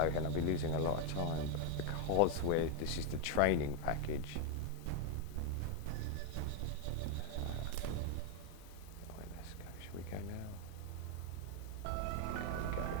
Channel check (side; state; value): both; different; correlation 0.01